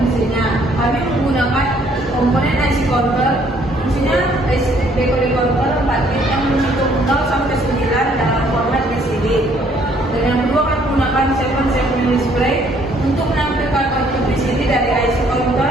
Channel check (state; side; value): normal; both; correlation 0.64